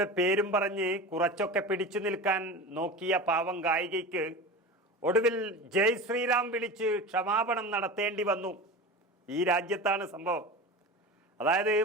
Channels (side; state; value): both; normal; correlation 0.30